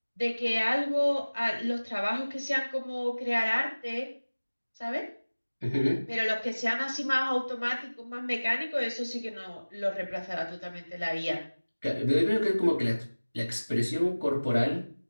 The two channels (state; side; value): inverted; both; correlation -1.00